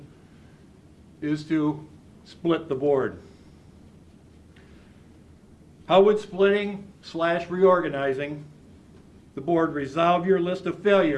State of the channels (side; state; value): both; identical; correlation 1.00